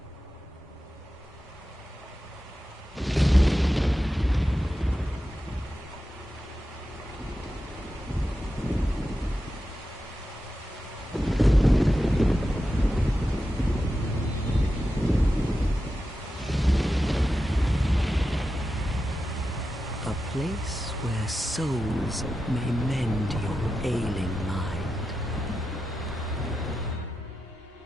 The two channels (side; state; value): both; normal; correlation 0.91